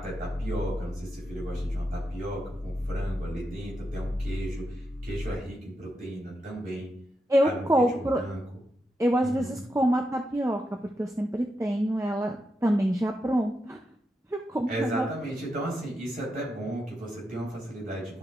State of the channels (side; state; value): both; normal; correlation 0.85